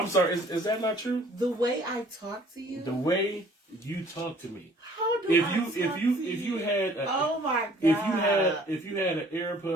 sorry. Is that not true? the way I talk to you. The way you talk to me. How do I talk to you? If you had oh my god. if you had an Arab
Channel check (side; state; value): both; normal; correlation 0.56